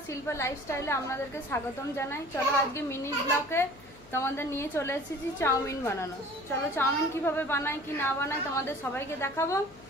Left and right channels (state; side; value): noise; left; hum, 23 dB below the sound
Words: শিল্পা লাইফস্টাইলে আপনাদেরকে স্বাগতম জানাই। চলো আজকে মিনি ব্লগে তোমাদের নিয়ে চলে এসেছি চাউমিন বানানো। চলো চাউমিন কিভাবে বানাই কি না বানাই তোমাদের সবাইকে দেখাবো,